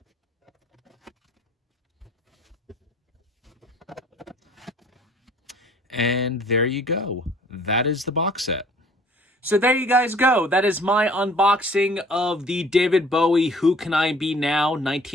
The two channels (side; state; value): both; normal; correlation 0.54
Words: And there you go. That is the box set. So there you guys go. That is my unboxing of the David Bowie Who Can I Be Now